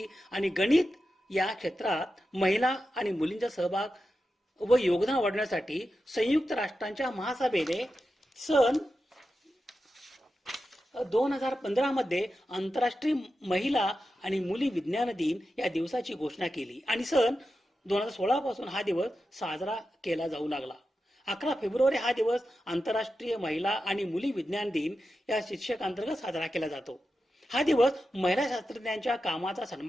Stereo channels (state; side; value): normal; both; correlation 0.90